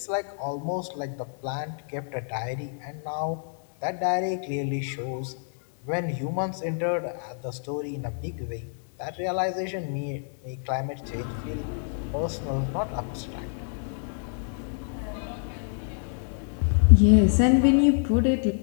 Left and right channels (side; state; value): right; silent; digital silence